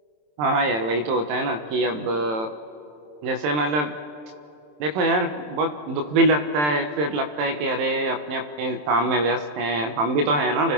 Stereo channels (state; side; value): late; left; 27 ms